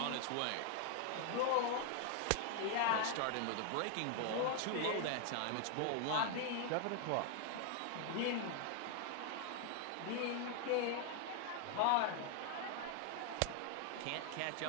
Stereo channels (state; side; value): different; both; correlation 0.00